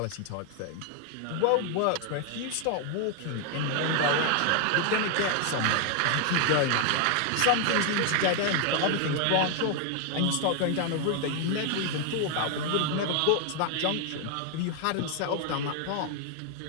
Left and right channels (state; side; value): different; both; correlation 0.00